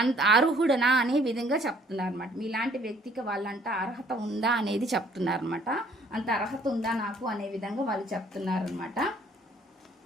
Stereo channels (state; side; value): normal; both; correlation 0.60